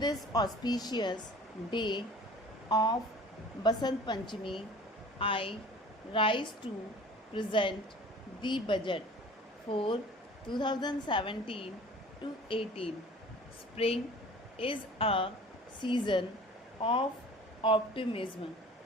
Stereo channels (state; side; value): normal; both; correlation 0.45